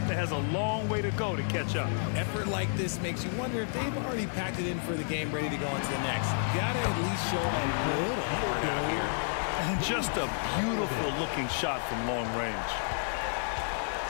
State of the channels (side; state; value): right; silent; digital silence